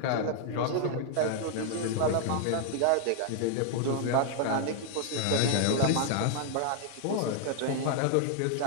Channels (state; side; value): different; both; correlation 0.00